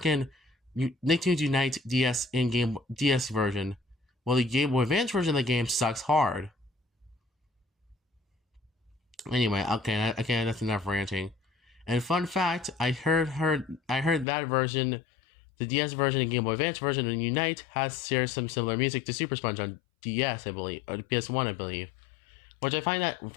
Nicktoons Unite DS in-game DS version. Well, the Game Boy Advance version of the game sucks hard. Anyway, okay, that's enough ranting. And fun fact, I heard that version, the DS version and Game Boy Advance version in Unite shares some similar music to Super Sponge on DS, I believe, or PS1, I believe. Which I find that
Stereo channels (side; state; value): right; drops out; at 14.2 s